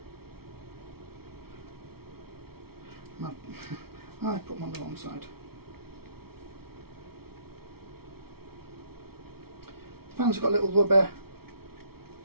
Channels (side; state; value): left; late; 0.95 ms